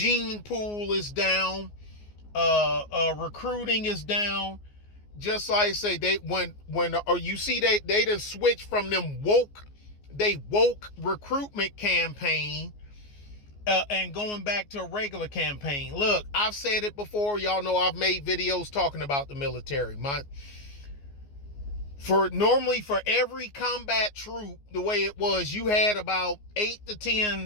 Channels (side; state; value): right; late; 14 ms